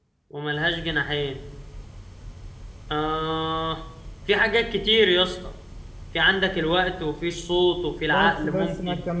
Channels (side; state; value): both; identical; correlation 1.00